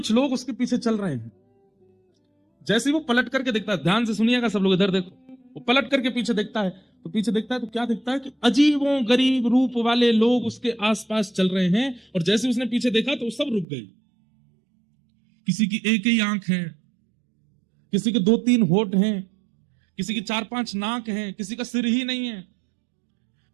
लोग उसके पीछे चल रहे हैं। जैसे ही वो पलट करके देखता है, ध्यान से सुनिएगा सब लोग, इधर देखो, वो पलट करके पीछे देखता है तो पीछे देखता है तो क्या देखता है कि अजीबों गरीब रूप वाले लोग उसके आसपास चल रहे हैं। और जैसे उसने पीछे देखा तो सब रुक गए। किसी की एक ही आंख है, किसी के 2-3 होठ हैं, किसी की 4-5 नाक हैं, किसी का सिर ही नहीं है।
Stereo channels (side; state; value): left; drops out; at 13.7 s